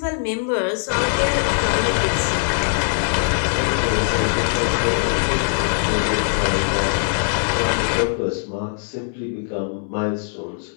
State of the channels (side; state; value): right; silent; digital silence